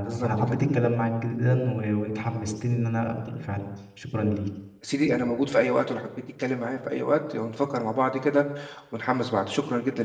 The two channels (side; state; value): both; identical; correlation 1.00